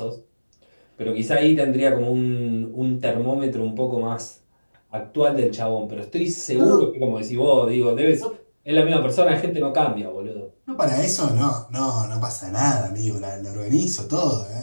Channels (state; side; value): inverted; both; correlation -1.00